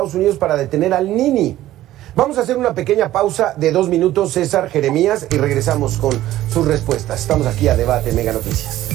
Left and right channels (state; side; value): quieter; left; 14.4 dB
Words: Unidos para detener al Nini. Vamos a hacer una pequeña pausa de 2 minutos, César, Jeremías, y regresamos con sus respuestas. Estamos aquí a Debate Mega Noticias.